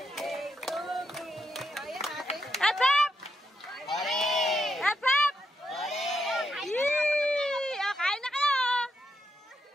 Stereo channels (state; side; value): normal; both; correlation 0.82